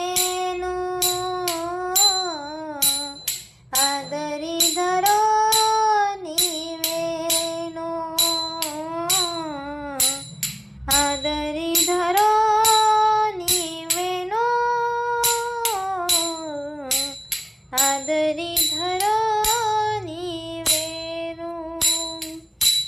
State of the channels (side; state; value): both; identical; correlation 1.00